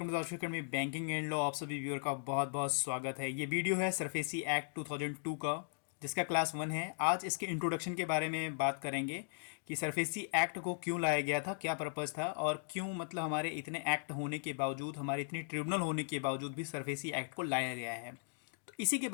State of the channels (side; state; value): right; silent; digital silence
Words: to the academy banking and law. आप सभी viewer का बहुत बहुत स्वागत है। ये वीडियो है सरफेसी एक्ट 2002 का, जिसका क्लास 1 है। आज इसके इंट्रोडक्शन के बारे में बात करेंगे कि सरफेसी एक्ट को क्यों लाया गया था, क्या पर्पज़ था और क्यों मतलब हमारे इतने एक्ट होने के बावजूद, हमारे इतनी ट्रिब्यूनल होने के बावजूद भी सरफेसी एक्ट को लाया गया है। तो इसी के